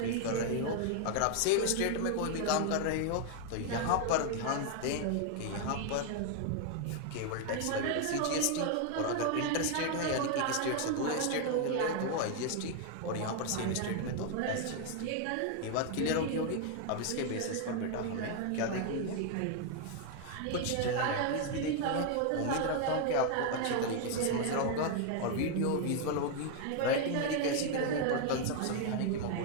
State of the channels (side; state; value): both; different; correlation 0.00